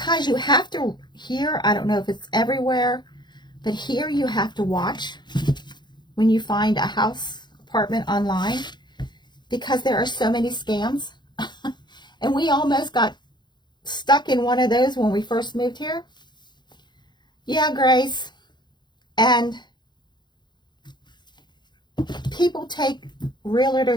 you have to, here, I don't know if it's everywhere, but here you have to watch when you find a house, apartment online, because there are so many scams. And we almost got stuck in one of those when we first moved here. Yeah, Grace. And people take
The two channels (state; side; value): late; right; 0.21 ms